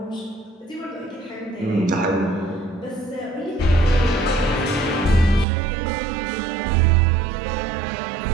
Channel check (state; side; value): drops out; left; at 5.5 s